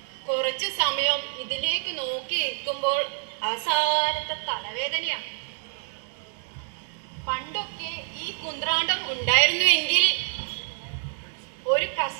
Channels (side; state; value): left; silent; digital silence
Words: കുറച്ച് സമയം ഇതിലേക്ക് നോക്കി നിൽക്കുമ്പോൾ അവസാനത്തെ തലവേദനയാണ്. പണ്ടൊക്കെ ഈ കുന്ത്രാണ്ടം ഉണ്ടായിരുന്നുവെങ്കിൽ ഒരു